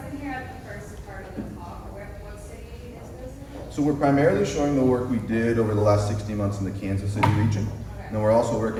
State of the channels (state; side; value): identical; both; correlation 1.00